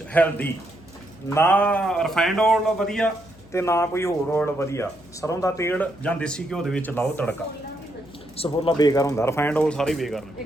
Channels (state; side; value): noise; left; hum, 25 dB below the sound